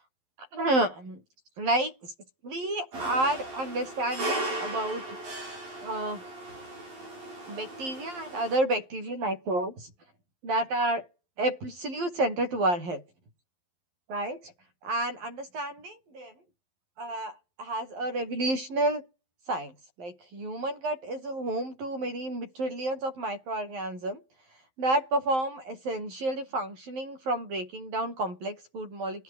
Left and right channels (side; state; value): left; late; 11 ms